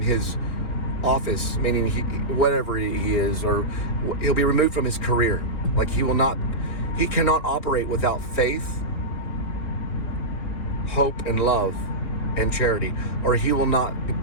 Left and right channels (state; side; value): late; right; 4.4 ms